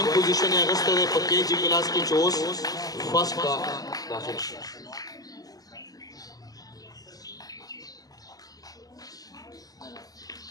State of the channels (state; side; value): late; right; 0.18 ms